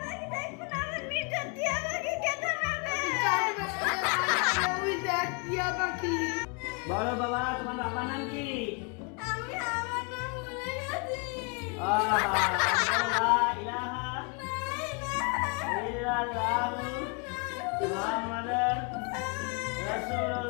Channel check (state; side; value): quieter; right; 34.0 dB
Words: বলো বাবা, তোমার বাবার নাম কি? লা ইলাহা ইল্লাল্লাহু মুহাম্মাদুর